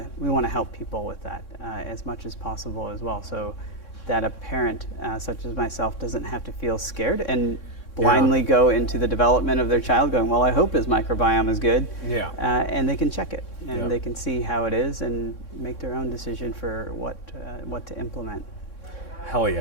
to help people with that as much as possible as well, so that a parent such as myself doesn't have to feel scared and blindly go into the development of their child going, well, I hope his microbiome is good. Yeah. And they can check it and they can see how it is and make their own decision for what to implement. Hell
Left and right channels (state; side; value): late; right; 3.6 ms